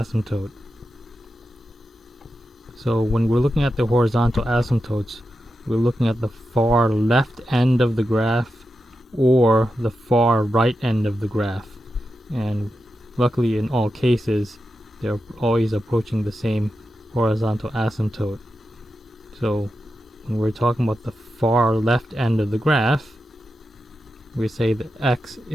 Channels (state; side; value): normal; both; correlation 0.89